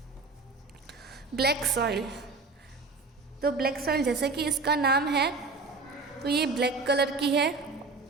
Black soil. तो ब्लैक सॉइल जैसे कि इसका नाम है, तो ये ब्लैक कलर की है।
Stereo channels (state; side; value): quieter; left; 4.0 dB